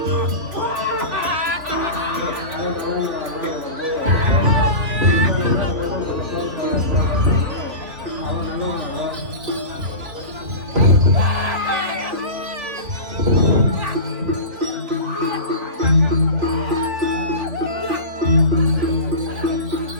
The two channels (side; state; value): left; late; 3.3 ms